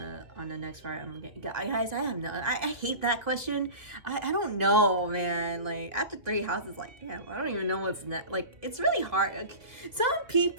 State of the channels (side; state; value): left; late; 1.7 ms